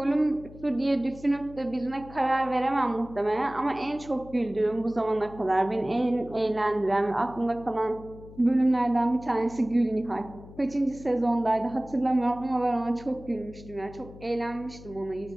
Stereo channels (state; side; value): noise; left; hum, 18 dB below the sound